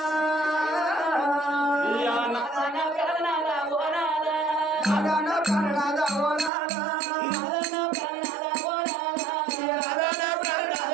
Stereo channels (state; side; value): drops out; left; at 6.5 s